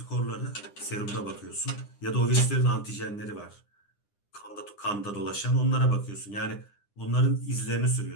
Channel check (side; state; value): right; late; 9.9 ms